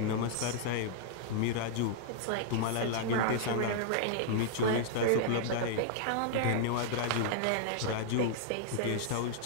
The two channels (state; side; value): different; both; correlation -0.01